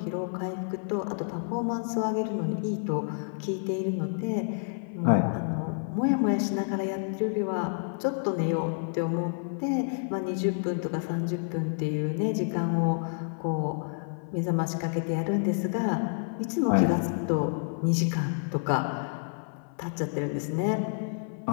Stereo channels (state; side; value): silent; right; 58 dB below the other